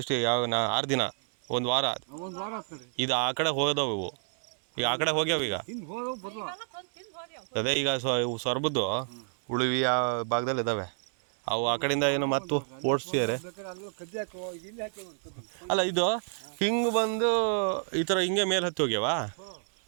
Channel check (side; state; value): left; silent; 58 dB below the other